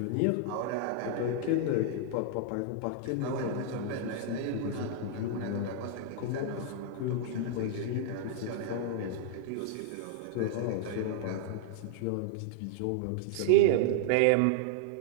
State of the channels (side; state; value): both; different; correlation 0.00